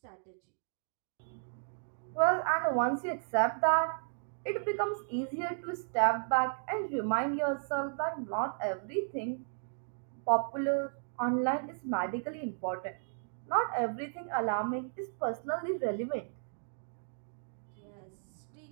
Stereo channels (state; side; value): silent; left; digital silence